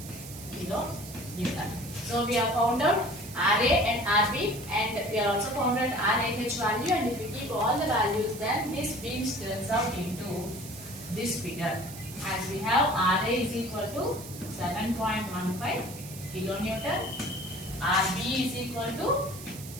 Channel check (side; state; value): right; noise; hiss, 14 dB below the sound